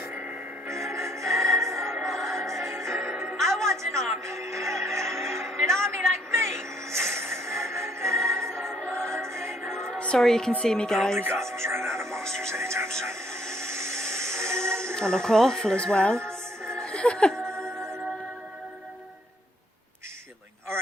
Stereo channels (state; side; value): normal; both; correlation 0.67